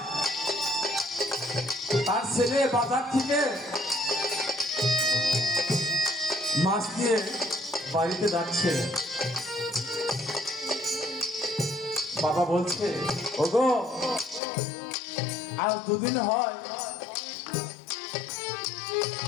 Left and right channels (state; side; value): drops out; right; at 14.4 s